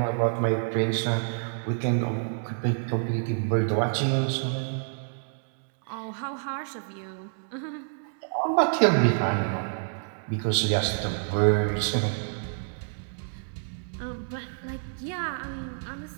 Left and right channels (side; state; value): left; silent; digital silence